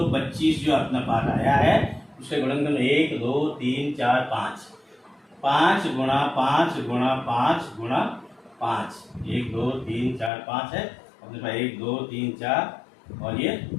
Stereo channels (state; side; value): drops out; right; at 10.3 s